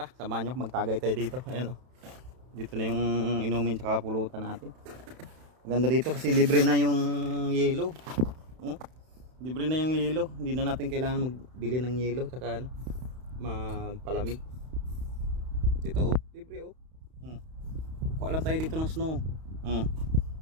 samahan nyo ako, magtagay tayo dito. Ayan o, dito na yung inumin tsaka pulutan natin. Maganda dito kasi libre na yung yelo. Libre na yung yelo, hindi na natin kailangan magbili ng yelo tsaka magpalamig. Dito libre o. Kuha lang tayo dito ng snow.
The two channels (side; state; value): left; late; 31 ms